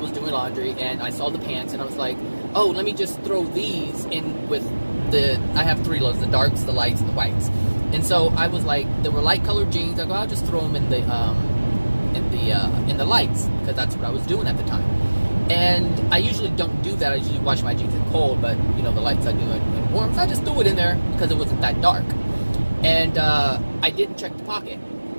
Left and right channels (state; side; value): inverted; both; correlation -1.00